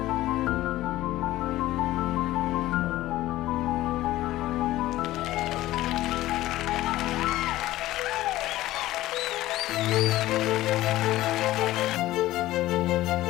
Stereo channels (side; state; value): right; quieter; 15.9 dB